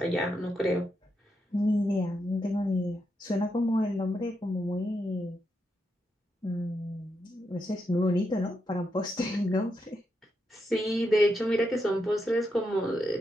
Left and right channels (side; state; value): both; normal; correlation 0.83